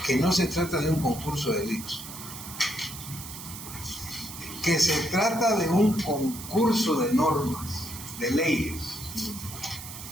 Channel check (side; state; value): right; noise; hiss, 11 dB below the sound